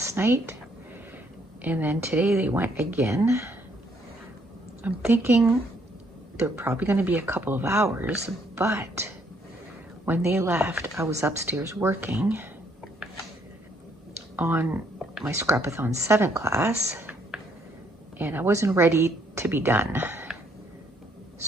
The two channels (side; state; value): both; normal; correlation 0.68